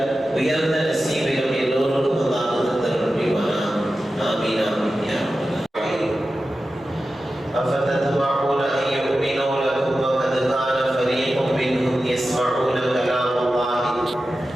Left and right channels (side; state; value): both; normal; correlation 0.93